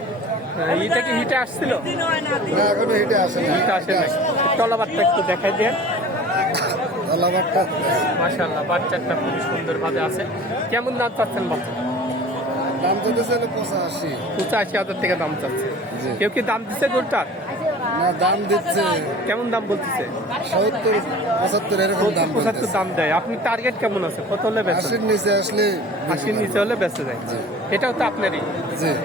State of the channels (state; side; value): normal; both; correlation 0.42